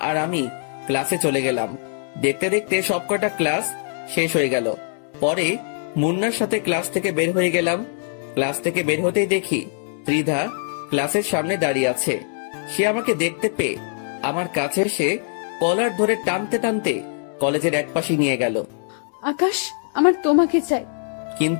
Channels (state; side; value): silent; right; 64 dB below the other